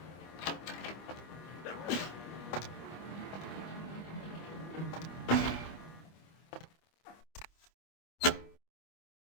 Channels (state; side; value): late; right; 25 ms